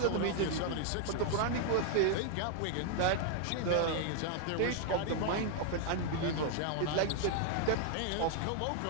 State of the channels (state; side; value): different; both; correlation 0.00